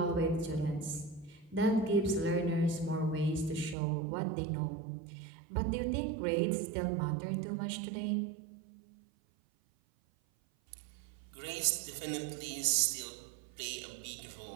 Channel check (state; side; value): drops out; left; at 3.8 s